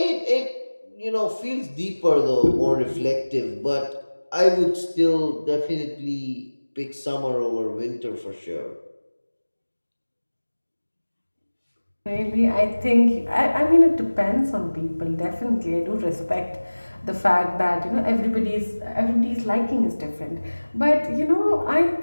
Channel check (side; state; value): both; inverted; correlation -1.00